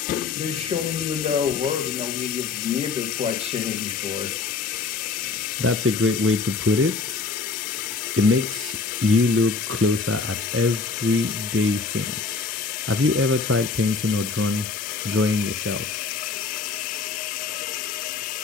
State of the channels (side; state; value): right; quieter; 4.5 dB